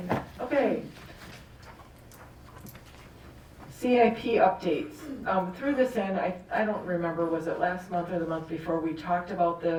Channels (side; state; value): both; identical; correlation 1.00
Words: that. Okay. CIP updates. Through this end, I don't remember, was it last month or the month before, we talked about